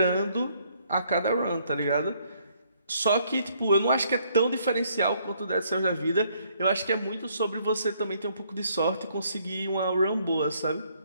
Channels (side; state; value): both; inverted; correlation -0.68